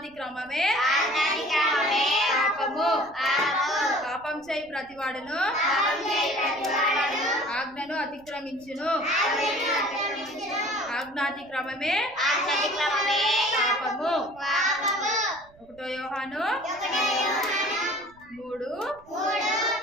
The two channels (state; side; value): noise; right; rumble, 27 dB below the sound